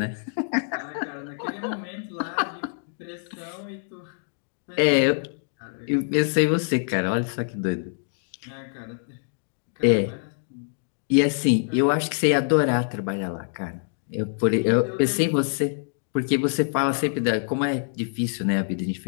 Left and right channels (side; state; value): right; silent; digital silence